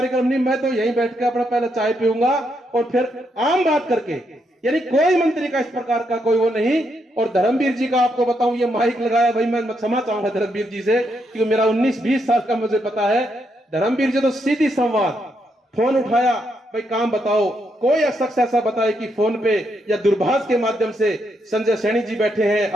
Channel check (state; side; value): normal; both; correlation 0.78